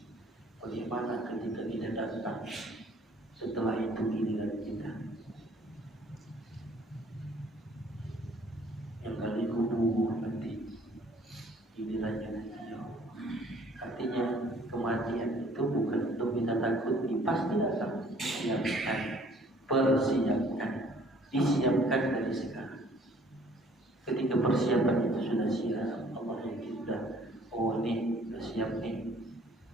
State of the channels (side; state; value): both; normal; correlation 0.57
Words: Bagaimana ketika kita datang setelah itu giliran kita yang kali kubur nanti gilirannya nanti. Artinya kematian itu bukan untuk kita takuti, pasti datang. Siapkan, persiapkan, disiapkan dari sekarang. Ketika persiapan itu sudah siap, Allah yakin sudah, oh ini sudah siap nih,